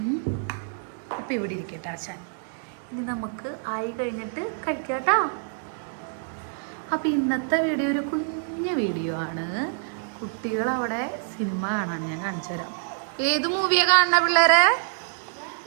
അപ്പോൾ ഇവിടെ ഇരിക്കട്ടെ ആശാൻ. ഇനി നമുക്ക് ആയി കഴിഞ്ഞിട്ട് കഴിക്കാം കേട്ടോ. അപ്പോൾ ഇന്നത്തെ വീഡിയോ ഒരു കുഞ്ഞു വീഡിയോ ആണ്. കുട്ടികളവിടെ സിനിമ കാണാൻ ഞാൻ കാണിച്ചു തരാം. ഏത് മൂവിയാണ് കാണുന്ന പിള്ളേരെ?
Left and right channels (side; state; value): left; silent; digital silence